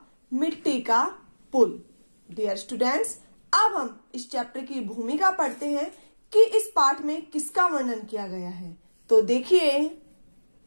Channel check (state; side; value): inverted; both; correlation -1.00